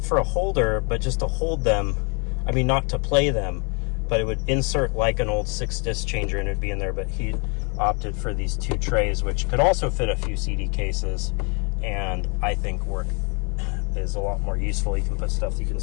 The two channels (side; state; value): right; quieter; 34.3 dB